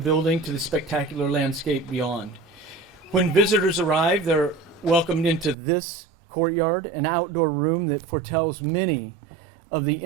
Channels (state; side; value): drops out; left; at 5.6 s